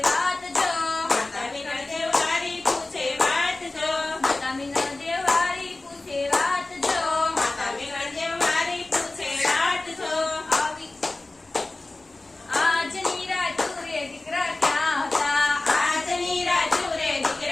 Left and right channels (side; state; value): right; quieter; 3.0 dB